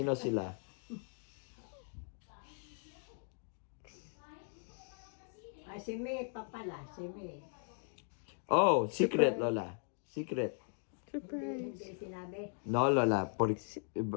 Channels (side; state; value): right; silent; 52 dB below the other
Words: sila? Ay, si May pa pala. Si May. Oh, secret, Lola. Secret. Hindi sinabi. No, Lola.